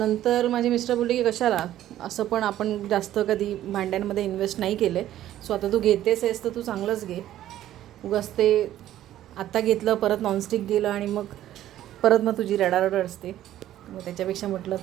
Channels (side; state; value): left; quieter; 12.8 dB